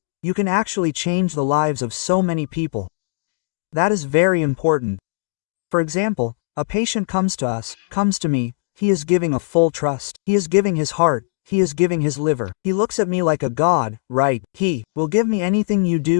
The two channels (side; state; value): right; silent; digital silence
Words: You can actually change the lives of so many people. That is very important. For example, a patient comes to me, he is giving a full trust. He is giving his heart, he is giving his liver. He looks at me like a god, right? He will give me anything you